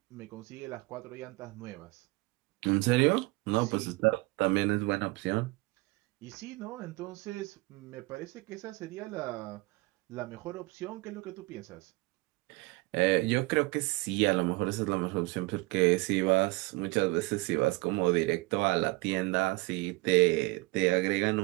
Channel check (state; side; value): quieter; left; 23.8 dB